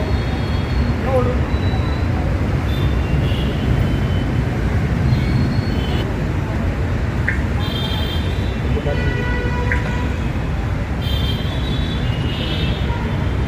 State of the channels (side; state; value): both; identical; correlation 1.00